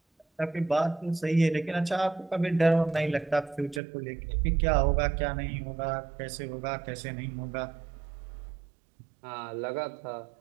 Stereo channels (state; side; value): drops out; left; at 3.8 s